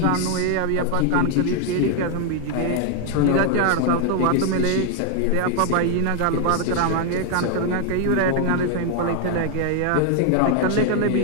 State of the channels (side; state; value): both; different; correlation 0.00